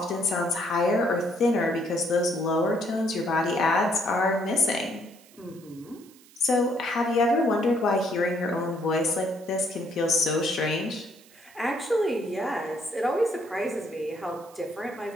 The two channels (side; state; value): right; noise; hiss, 25 dB below the sound